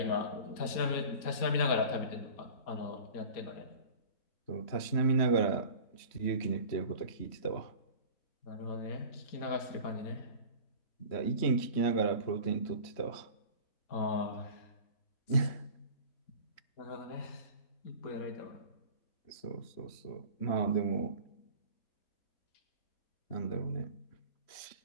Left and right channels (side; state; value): right; late; 3.1 ms